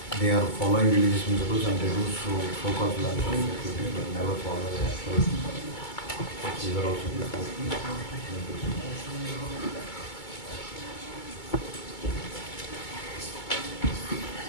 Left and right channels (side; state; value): right; late; 2.2 ms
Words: they are following religious principles and they do so-called philanthropic activities, but never follow the actual. These are also before.